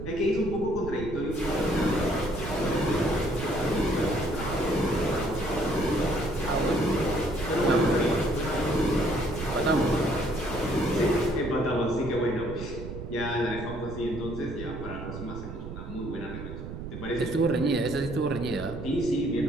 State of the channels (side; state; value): right; noise; rumble, 9 dB below the sound